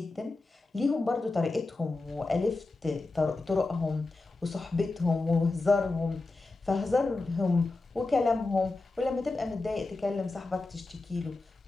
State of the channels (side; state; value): right; quieter; 3.4 dB